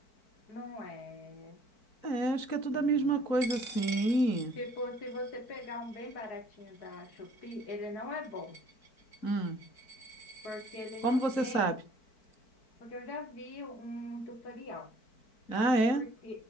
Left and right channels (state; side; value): late; right; 4.5 ms